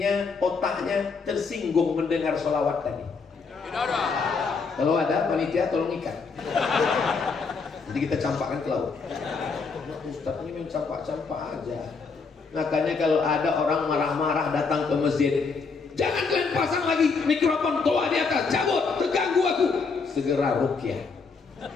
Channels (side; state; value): right; quieter; 4.8 dB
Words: otaknya tersinggung mendengar sholawat tadi? Tidak ada. Kalau ada, panitia tolong ikat. Nanti kita campakkan ke laut. Ustaz ini main campak-campak aja. Makanya kalau ada orang marah-marah datang ke masjid, jangan kalian pasang lagi mikrofon tua di atas, cabut, terganggu aku. Segera ruqyah.